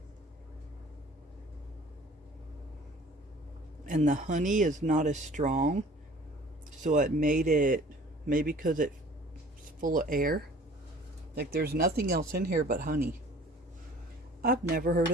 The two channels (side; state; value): both; normal; correlation 0.49